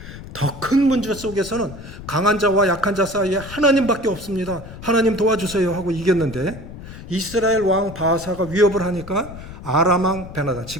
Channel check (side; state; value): left; noise; rumble, 14 dB below the sound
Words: 더 큰 문제 속에서는 강한 자와 약한 자 사이에 하나님밖에 없습니다. 하나님 도와주세요 하고 이겼는데 이스라엘 왕 바하사가 위협을 하니까 아람 왕 베나다,